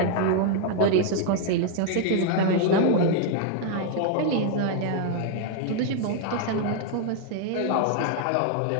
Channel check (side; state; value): both; different; correlation 0.00